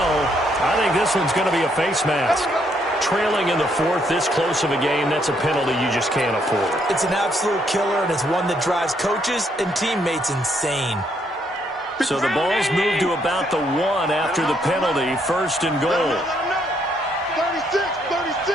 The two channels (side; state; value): both; normal; correlation 0.72